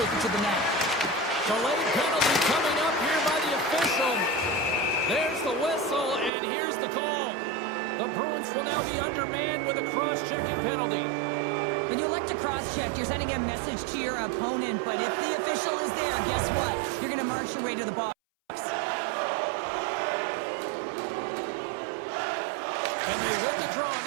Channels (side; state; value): left; drops out; at 6.3 s